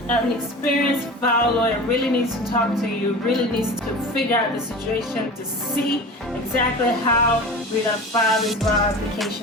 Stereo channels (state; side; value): normal; both; correlation 0.34